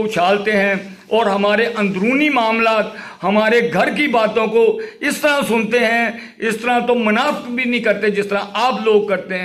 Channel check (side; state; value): both; identical; correlation 1.00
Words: اچھالتے ہیں اور ہمارے اندرونی معاملات، ہمارے گھر کی باتوں کو اس طرح سنتے ہیں، اس طرح تو منافق بھی نہیں کرتے جس طرح آپ لوگ کرتے